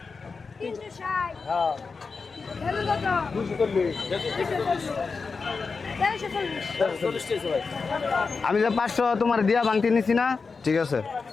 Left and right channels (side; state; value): right; quieter; 4.7 dB